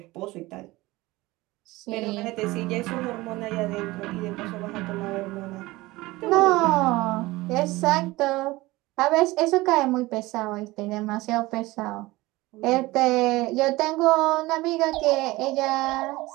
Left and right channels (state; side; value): quieter; left; 20.0 dB